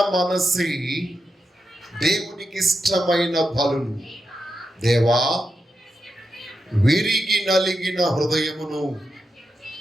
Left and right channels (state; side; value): normal; both; correlation 0.87